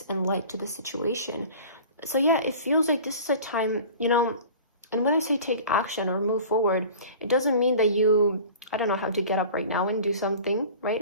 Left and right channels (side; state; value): both; inverted; correlation -0.42